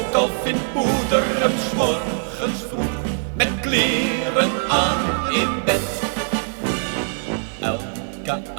al vindt moeder hem 's morgens vroeg met kleren aan in bed. Elke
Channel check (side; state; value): left; silent; digital silence